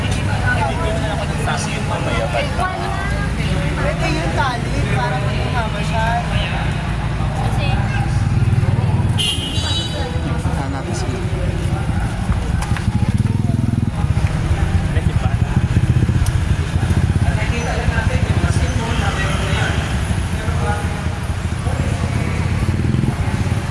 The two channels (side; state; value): both; identical; correlation 1.00